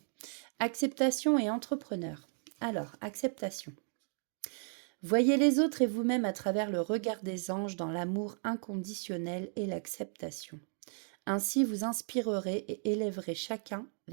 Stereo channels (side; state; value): left; silent; 55 dB below the other